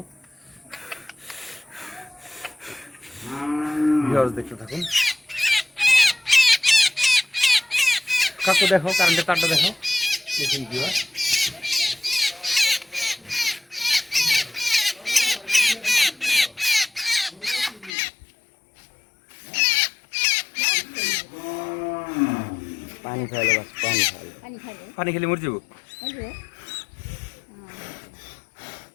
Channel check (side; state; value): right; drops out; at 17.9 s